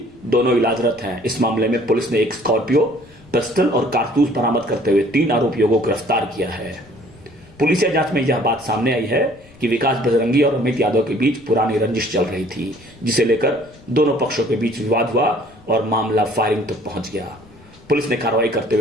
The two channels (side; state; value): left; noise; rumble, 26 dB below the sound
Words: दोनों इलाजरत हैं। इस मामले में पुलिस ने एक स्कॉर्पियो, पिस्टल और कारतूस बरामद करते हुए 3 आरोपियों को गिरफ्तार किया है। पुलिस जांच में यह बात सामने आई है कि विकास बजरंगी और अमित यादव के बीच पुरानी रंजिश चल रही थी, जिसे लेकर दोनों पक्षों के बीच विवाद हुआ और मामला फायरिंग तक पहुंच गया। पुलिस ने कार्रवाई करते